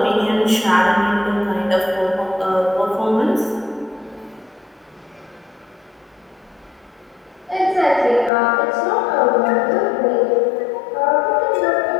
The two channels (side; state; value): right; drops out; at 8.3 s